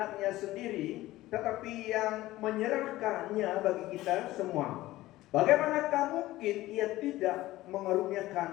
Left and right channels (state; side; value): quieter; right; 16.7 dB